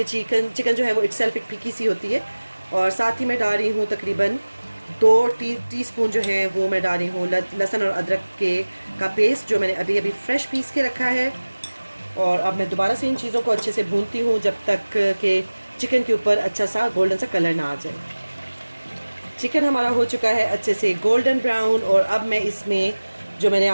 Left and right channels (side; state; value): both; inverted; correlation -1.00